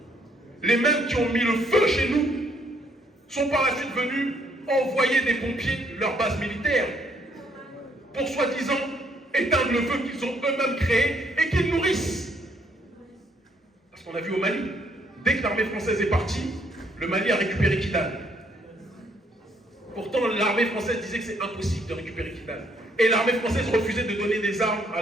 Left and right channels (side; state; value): both; normal; correlation 0.69